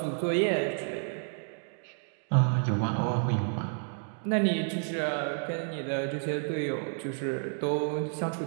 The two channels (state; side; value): silent; left; 57 dB below the other